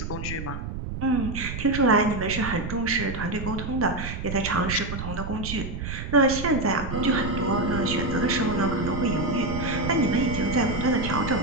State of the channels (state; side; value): noise; right; rumble, 7 dB below the sound